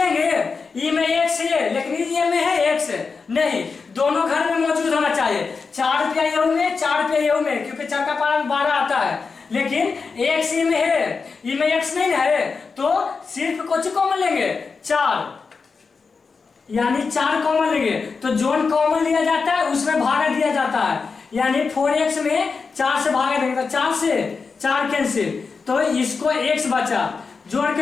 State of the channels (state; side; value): quieter; right; 4.9 dB